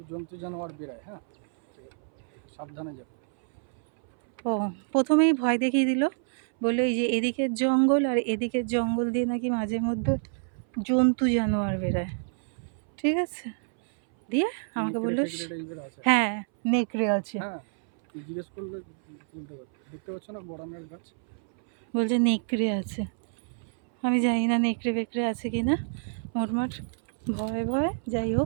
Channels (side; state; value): left; silent; 60 dB below the other